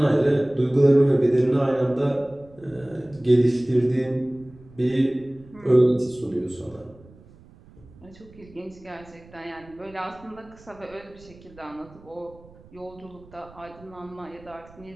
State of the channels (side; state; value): right; noise; rumble, 24 dB below the sound